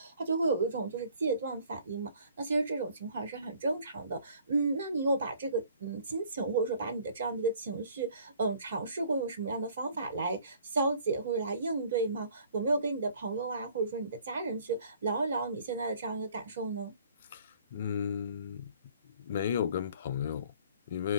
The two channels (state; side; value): inverted; both; correlation -0.56